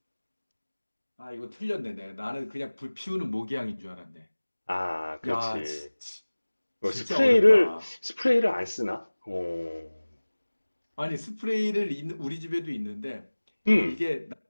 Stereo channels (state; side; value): inverted; both; correlation -1.00